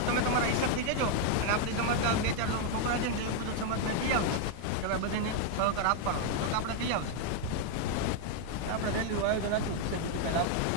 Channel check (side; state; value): both; different; correlation 0.00